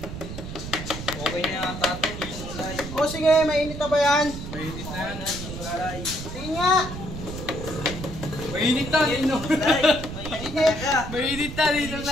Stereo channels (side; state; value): right; noise; rumble, 9 dB below the sound